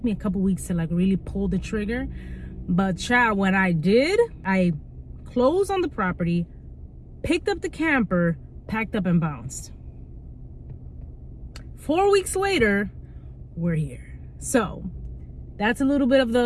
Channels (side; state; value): both; identical; correlation 1.00